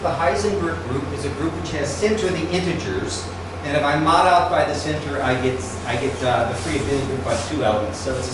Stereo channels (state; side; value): identical; both; correlation 1.00